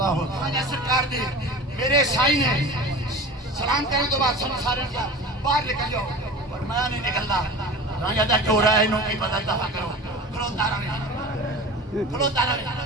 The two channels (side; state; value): both; normal; correlation 0.34